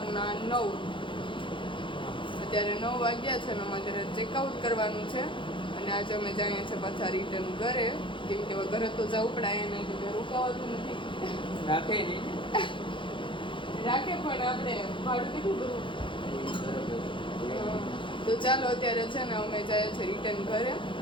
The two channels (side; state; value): right; late; 0.24 ms